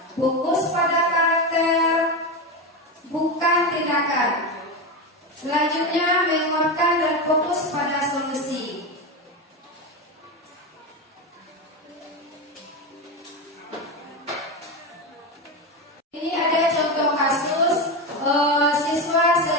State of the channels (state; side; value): normal; both; correlation 0.16